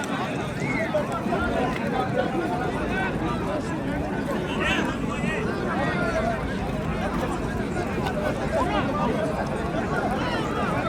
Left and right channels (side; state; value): both; identical; correlation 1.00